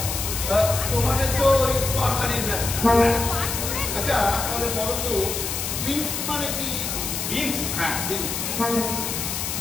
তোমাদের তো ওই তরকারির ব্যবসা। আচ্ছা তাহলে বলো তো বিনস মানে কি? বিনস? হ্যাঁ বিনস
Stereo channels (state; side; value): noise; left; hiss, 3 dB below the sound